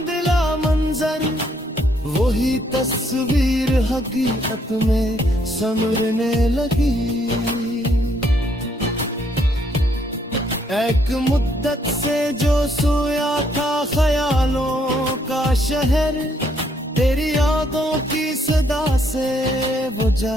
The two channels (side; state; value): both; normal; correlation 0.70